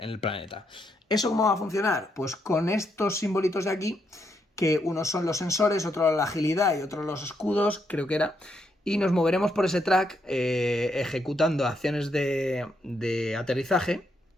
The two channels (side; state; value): both; normal; correlation 0.78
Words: planeta. ¿Eso cómo va a funcionar? Pues con estos simbolitos de aquí, que unos son los sensores, otros la agilidad y otros los escudos, creo que era, y nos moveremos por ese track ejecutando acciones de aterrizaje,